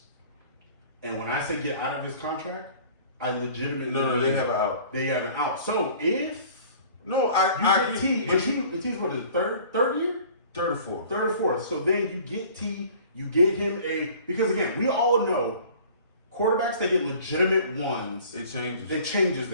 And when I say get out of his contract, I legitimately... No, they have an out. They have an out. So if... No, I get T, and T's what is it, third year? Third or fourth. Third or fourth. So then you get T, you get him because again, we all know quarterbacks that get legitimate ones. It changes. It changes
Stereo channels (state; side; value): inverted; both; correlation -0.48